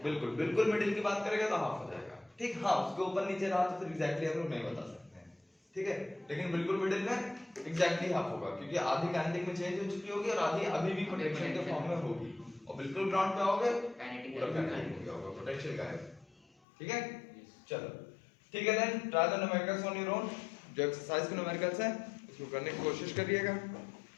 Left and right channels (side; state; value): right; drops out; at 16.4 s